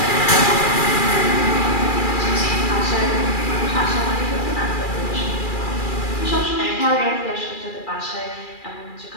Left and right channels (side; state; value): right; late; 2.4 ms